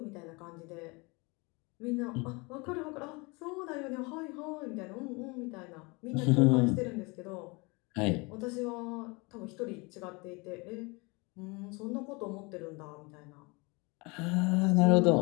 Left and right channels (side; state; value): right; quieter; 27.6 dB